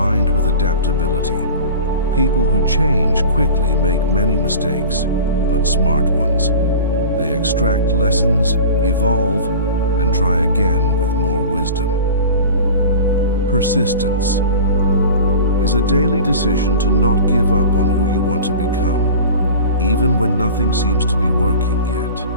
with adaptability. People who change quickly make many mistakes, but smart ones. They extract lessons, evolve, and try again with more wisdom. Persistence is a daily decision to not give up on who you want to become, even when nothing seems to be working yet.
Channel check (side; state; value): both; inverted; correlation -0.37